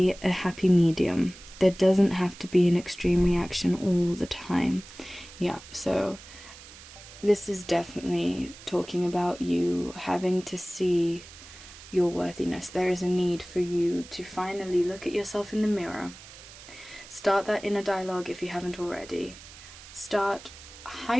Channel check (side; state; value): right; noise; hiss, 18 dB below the sound